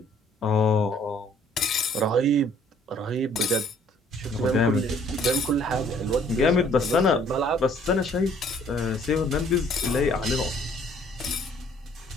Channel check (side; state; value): both; normal; correlation 0.60